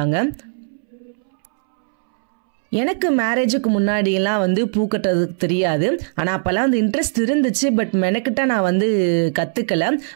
எனக்கு மேரேஜுக்கு முன்னாடியெல்லாம் வந்து பூ கட்டுறதுக்கு தெரியாது. ஆனால் அப்போல்லாம் அந்த இன்ட்ரெஸ்ட் இருந்துச்சு, பட் மெனக்கிட்ட நான் வந்து கற்றுக்கலை.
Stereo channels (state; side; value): silent; left; 66 dB below the other